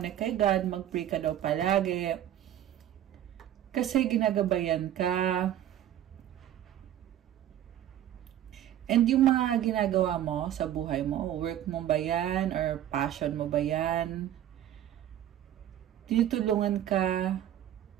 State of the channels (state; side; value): quieter; left; 11.5 dB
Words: kay God. Mag-pray ka daw palagi. Kasi ginagabayan ka. And yung mga ginagawa mo sa buhay mo, work mo ba yan or passion mo ba yan? Tinutulungan ka